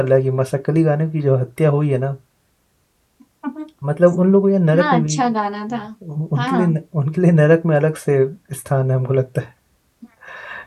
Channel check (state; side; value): identical; both; correlation 1.00